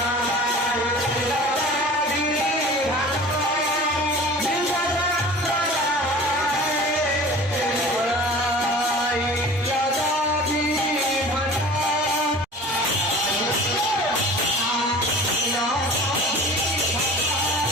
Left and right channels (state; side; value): normal; both; correlation 0.41